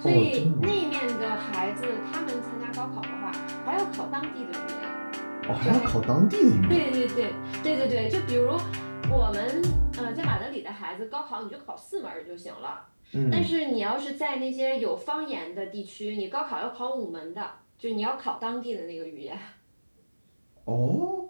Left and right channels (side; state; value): both; inverted; correlation -1.00